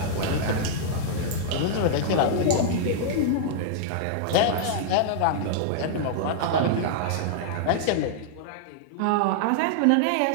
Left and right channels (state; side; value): different; both; correlation -0.01